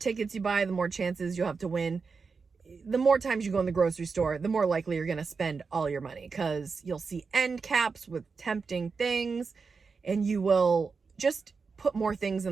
you buy, the more chances you'll have to win. The more times you go in the grocery store, the more likely you're going to spend all your money because you'll see end caps with tempting things and you will just put more things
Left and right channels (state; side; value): quieter; left; 4.9 dB